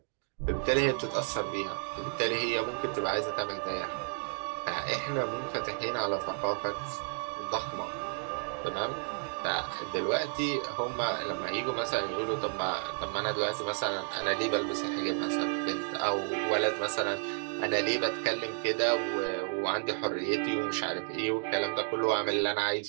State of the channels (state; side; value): silent; left; 57 dB below the other